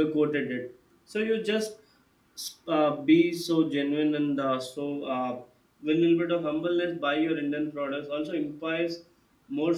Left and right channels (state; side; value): identical; both; correlation 1.00